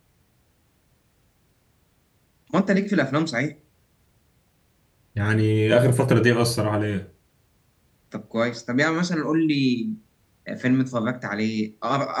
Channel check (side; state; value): both; identical; correlation 1.00